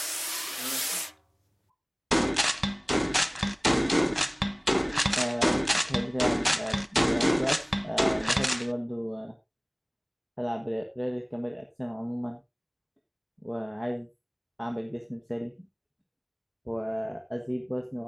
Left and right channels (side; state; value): both; identical; correlation 1.00